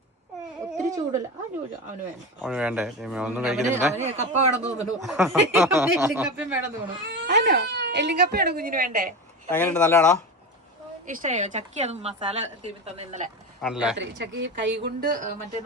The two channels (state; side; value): normal; both; correlation 0.23